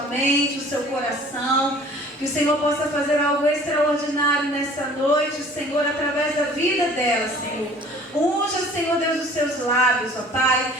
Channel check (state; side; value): normal; both; correlation 0.50